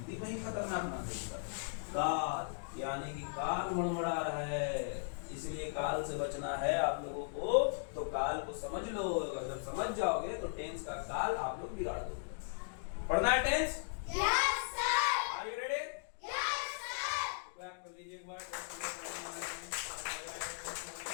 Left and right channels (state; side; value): silent; right; digital silence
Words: में ही खतरनाक ना देगा काल, यानी कि काल मड़मड़ा रहा है, इसलिए काल से बचना है आप लोगों को। तो काल को समझ लो, अगर जब समझ जाओगे तो टेंस का काल आप लोग बिगाड़ दोगे। पढ़ना है tense? Yes sir. Are you ready? Yes sir. Clap कर लीजिए एक बार।